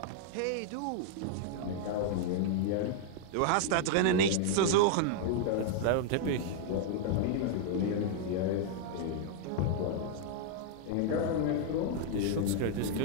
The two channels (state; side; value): different; both; correlation -0.01